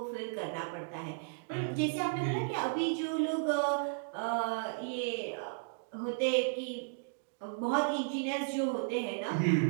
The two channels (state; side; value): silent; left; digital silence